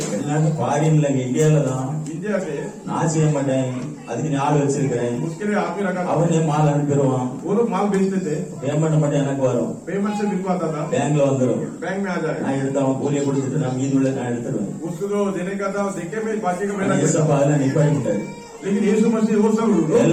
எல்லாரும் ஃபாரின்ல இந்தியால தான் इंडिया से நான் செய்ய மாட்டேன், அதுக்கு நீ ஆள் வச்சிருக்கிறேன், उसके लिए आदमी रखा था அவனே மால் அனுப்பிடுவான், वो लोग माल बेचते थे பேமெண்ட் மட்டும் எனக்கு வரும், पेमेंट से बिल को आता था பேங்க்ல வந்துடும், बैंक में आ जाए நான் எடுத்து அவன் கூலியை கொடுத்துட்டு நான் மீதி உள்ள நான் எடுத்துருவேன். उसको जो देने का था देखे में बाकी का मेरा ஏசப்பா அதெல்லாம் நிப்பாட்டிட்டாரு, लेकिन यीशु मसीह वो सब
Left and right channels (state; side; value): identical; both; correlation 1.00